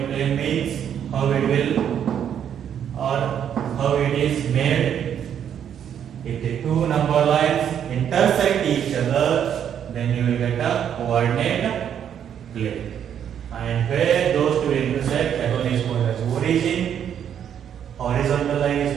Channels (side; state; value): left; quieter; 9.0 dB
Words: plane means how it will or how it is made. If the two number lines intersect each other, then you will get a coordinate plane. And where those two intersect, that one is called as origin. Horizontal line is